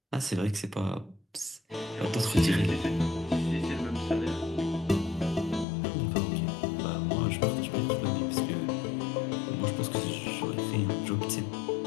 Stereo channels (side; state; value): right; drops out; at 5.7 s